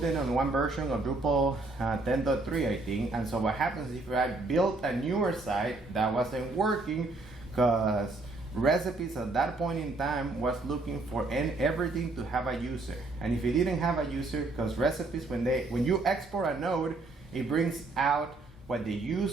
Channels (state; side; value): quieter; left; 3.2 dB